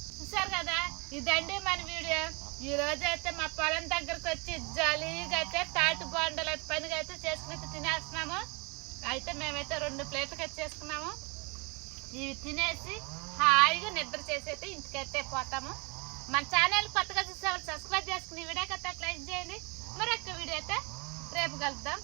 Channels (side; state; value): left; quieter; 29.7 dB